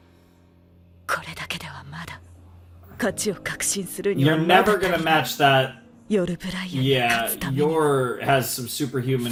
これだけではまだ勝ちを確信するには You're まだ never gonna match that. 夜ブライアンに Yeah, 勝つためには your has some superhuman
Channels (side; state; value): both; identical; correlation 1.00